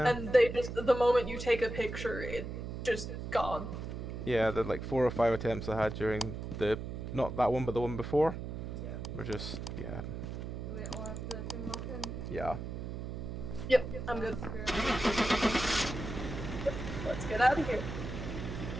And they just, the moment you take a picture, it just gone. Yeah, the like 4 or 5 attempts I had during the, not that one but the one before. Yeah. We're just, yeah. Do we all have the thing locked in? Yeah. Yep, I'm good. Let's get out of here.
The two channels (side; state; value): right; noise; hum, 6 dB below the sound